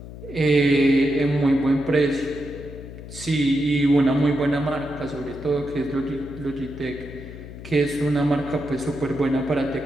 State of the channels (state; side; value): noise; left; hum, 13 dB below the sound